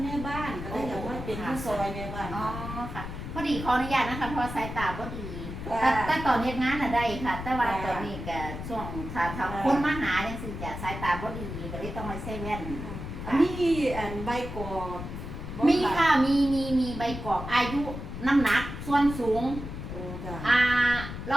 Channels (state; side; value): noise; left; rumble, 8 dB below the sound